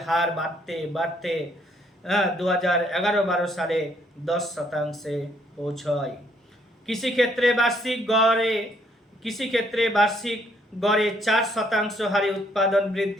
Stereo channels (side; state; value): both; normal; correlation 0.68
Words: হার বাড়তে 2011-12 সালে 10% পৌঁছয়। কৃষিক্ষেত্রে বার্ষিক গড়ে 4% হারে উৎপাদন